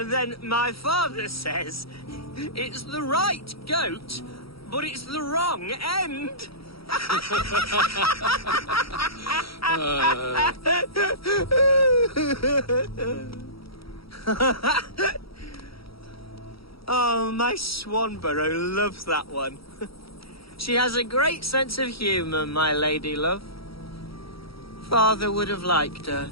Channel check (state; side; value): late; right; 0.75 ms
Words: my father says, it's the right goat, but it's the wrong end. Oh, my Swanborough loves that one. She has a great sense of humor, my lady love. Father would have liked her.